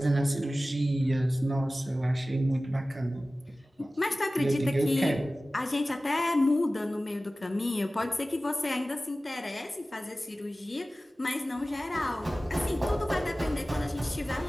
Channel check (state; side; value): normal; both; correlation 0.96